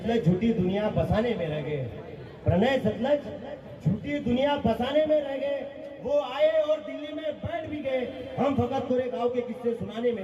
झूठी दुनिया बसाने में रह गए, प्रणय सतलज झूठी दुनिया बसाने में रह गए। वो आए और दिल्ली में बैठ भी गए, हम फकत कोरे गांव के किस्से सुनाने में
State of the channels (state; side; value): identical; both; correlation 1.00